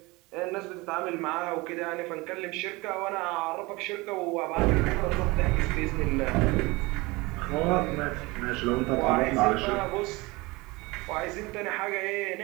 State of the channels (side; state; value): left; quieter; 23.3 dB